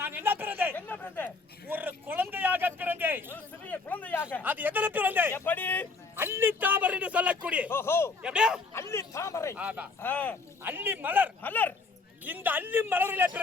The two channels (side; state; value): right; quieter; 4.1 dB